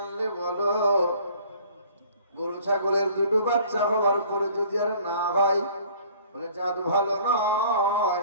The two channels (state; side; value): inverted; both; correlation -0.52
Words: বলো? গরু ছাগলের 2টো বাচ্চা হওয়ার পরে যদি আর না হয়, বলে জাদু ভালো নয়।